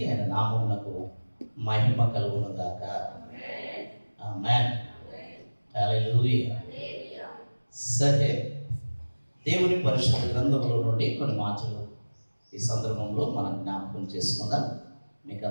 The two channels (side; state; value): both; inverted; correlation -1.00